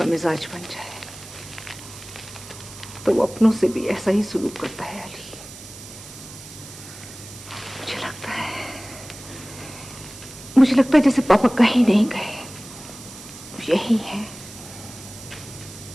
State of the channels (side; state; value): right; noise; hiss, 15 dB below the sound